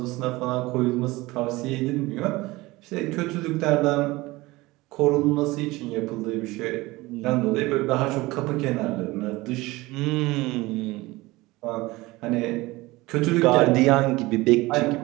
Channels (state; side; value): quieter; left; 20.6 dB